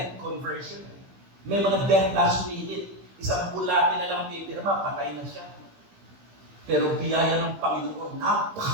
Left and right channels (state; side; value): late; left; 15 ms